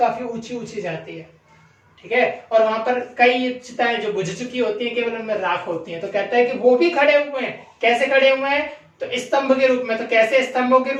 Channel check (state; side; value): identical; both; correlation 1.00